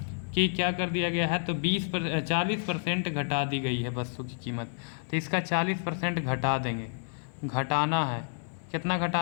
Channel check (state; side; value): silent; right; digital silence